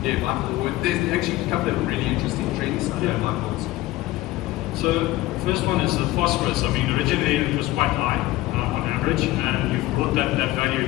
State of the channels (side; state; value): right; quieter; 17.4 dB